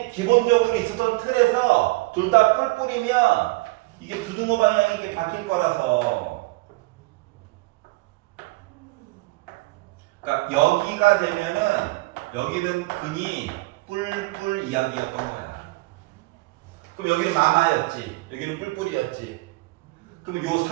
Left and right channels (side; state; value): left; quieter; 22.5 dB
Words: 있었던 틀에서 둘 다 뿔뿔이면 이게 부등호 방향이 이렇게 바뀔 거라서. 그러니까 여기가 되면은 여기는 근이 뿔뿔 이야기였던 거야. 그럼 여기는 마마였지. 여기는 뿔뿔이었지. 그럼 요